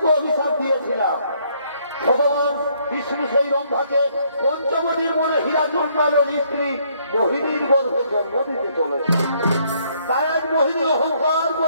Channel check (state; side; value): inverted; both; correlation -0.67